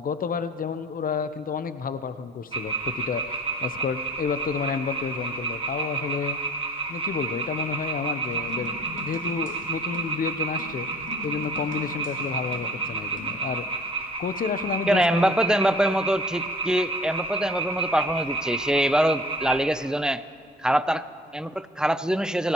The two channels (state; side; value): normal; both; correlation 0.49